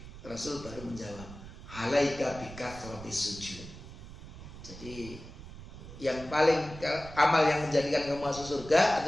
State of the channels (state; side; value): noise; right; rumble, 14 dB below the sound